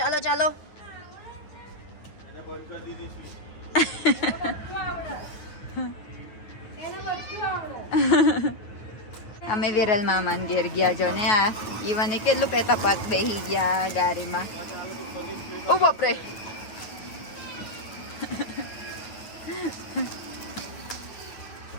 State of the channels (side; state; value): right; late; 9.4 ms